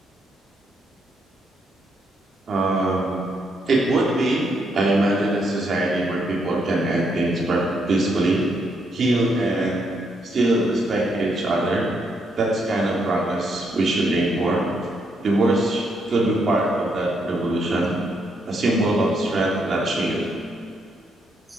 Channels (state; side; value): normal; both; correlation 0.76